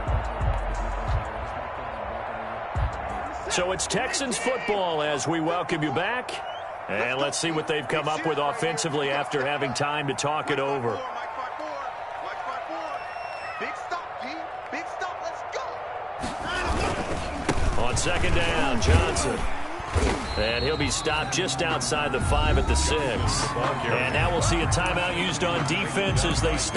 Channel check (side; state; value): both; identical; correlation 1.00